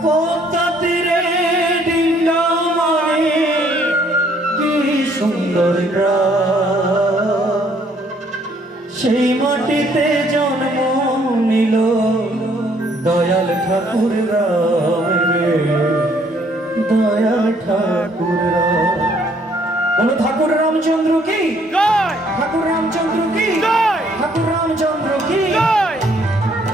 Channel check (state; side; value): normal; both; correlation 0.65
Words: পদ্মাতীরে ডিঙ্গা মনে কি সুন্দর গ্রাম, সেই মাটিতে জন্ম নিল দয়াল ঠাকুর রাম রে, দয়াল ঠাকুর রাম। বলো ঠাকুর রামচন্দ্র কি জয়, ঠাকুর রামচন্দ্র কি জয়, ঠাকুর রামচন্দ্র কি জয়।